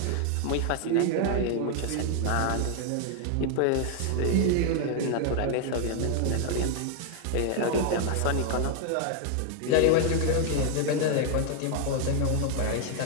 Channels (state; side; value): different; both; correlation 0.00